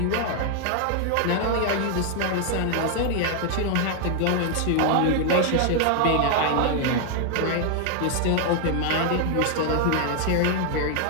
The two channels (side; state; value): both; different; correlation 0.00